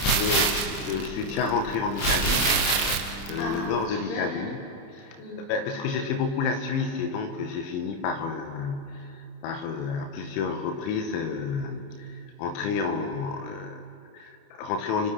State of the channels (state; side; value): late; right; 30 ms